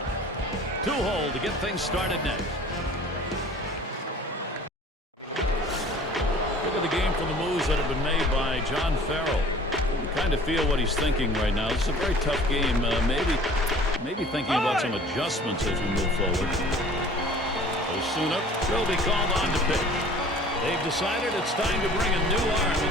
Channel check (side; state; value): both; normal; correlation 0.48